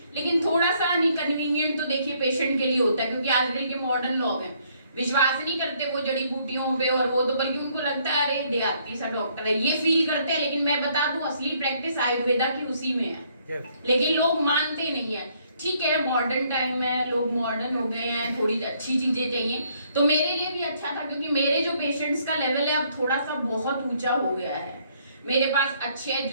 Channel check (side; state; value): both; inverted; correlation -0.67